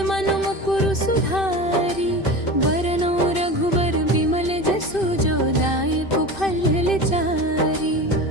मन मुकुरु सुधारी। बरनौ रघुबर बिमल जसु, जो दायक फल चारी।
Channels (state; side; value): late; right; 2.6 ms